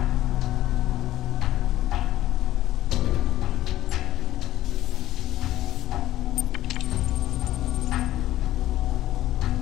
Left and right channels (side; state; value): right; quieter; 14.3 dB